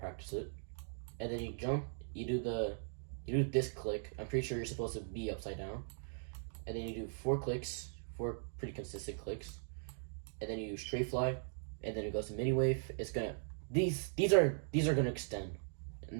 it. And then you jump. You do this click. I'm pretty sure you're supposed to be upside down. And then you do 4 clicks, 4 pretty consistent clicks. And then you straight fly, and then it goes to mini wave. It's gonna these are gonna extend.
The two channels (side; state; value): left; silent; digital silence